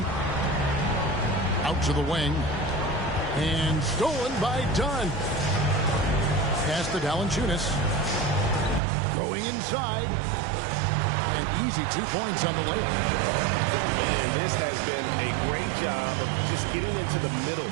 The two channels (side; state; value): left; drops out; at 8.8 s